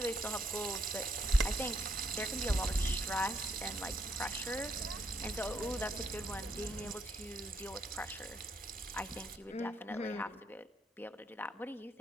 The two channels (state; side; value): normal; both; correlation 0.74